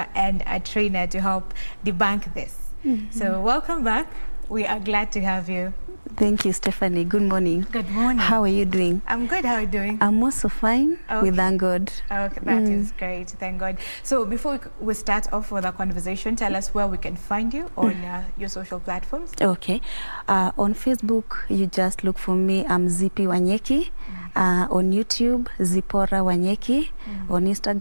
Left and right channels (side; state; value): both; inverted; correlation -1.00